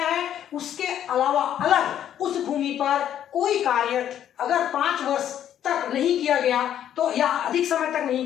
है उसके अलावा अलग उस भूमि पर कोई कार्य अगर 5 वर्ष तक नहीं किया गया तो या अधिक समय तक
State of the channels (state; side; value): quieter; right; 10.4 dB